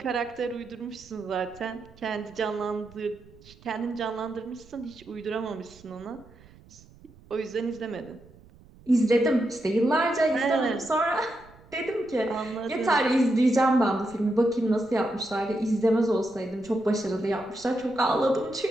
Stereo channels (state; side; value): noise; right; rumble, 25 dB below the sound